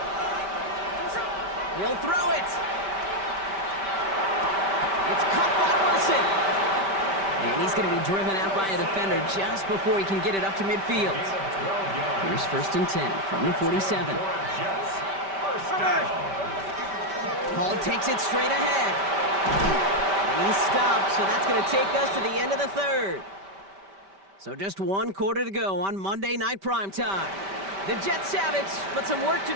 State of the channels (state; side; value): late; left; 5.1 ms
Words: He'll throw it. It's caught by Wilson. And he's going to be driven out by a defender just before he can get it up to midfield. Here's first and 10 from the 47. Hall takes it straight ahead. And he's stopped, so that's going to take us to the end of the third. So just one quarter to go on Monday Night Primetime. The Jets have it, but some work to